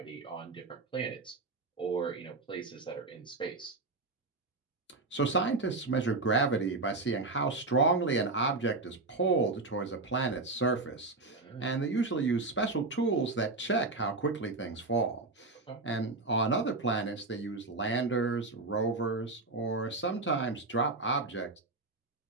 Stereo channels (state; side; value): quieter; left; 3.5 dB